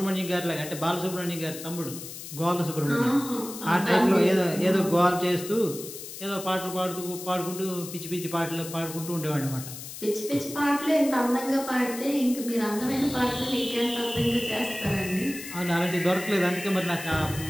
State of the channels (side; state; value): left; noise; hiss, 11 dB below the sound